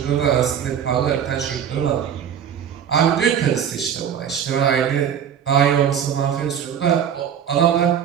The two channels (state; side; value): quieter; left; 8.7 dB